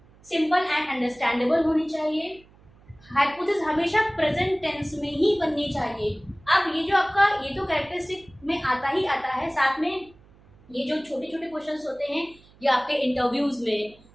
सिंपल एंड अंडरस्टैंडेबल होनी चाहिए, हाइपोथेसिस हमेशा प्रेजेंट टेंस में ही बननी चाहिए। अब ये जो आपका ये तो कैरेक्टरिस्टिक में आता ही आता है, साथ में ये जो छोटे छोटे क्वेश्चंस होते हैं ये आपके इंटरव्यूज में,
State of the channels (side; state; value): right; noise; hum, 27 dB below the sound